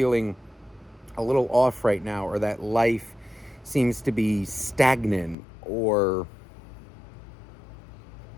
a little off right now, or that life seems to be stagnant, or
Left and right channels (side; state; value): right; drops out; at 5.4 s